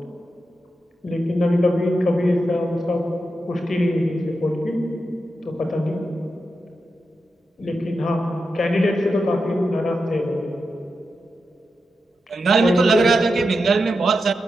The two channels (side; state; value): both; normal; correlation 0.88